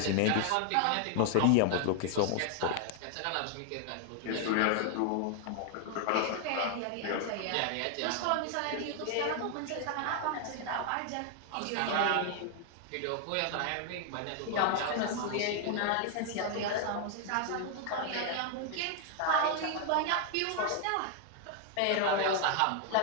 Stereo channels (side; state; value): both; different; correlation 0.00